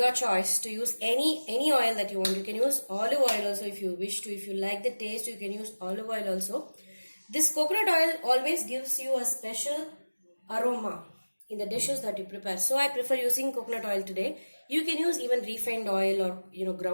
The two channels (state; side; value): inverted; both; correlation -1.00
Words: choice to use any oil that you want. You can use olive oil also if you wish to. If you like the taste, you can use olive oil also. This coconut oil always gives you a special aroma in the dishes that you prepare. So I prefer using coconut oil today. You can use even refined oil or